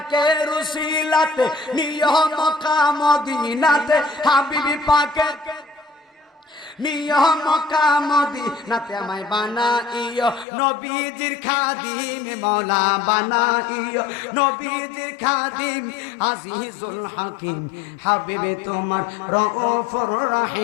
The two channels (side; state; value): right; drops out; at 10.5 s